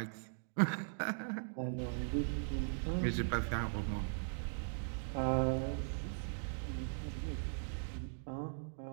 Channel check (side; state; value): left; silent; digital silence